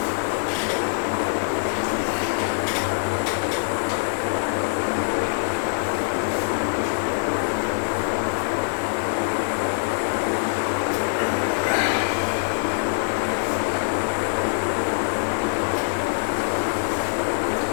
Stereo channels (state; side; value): silent; right; 63 dB below the other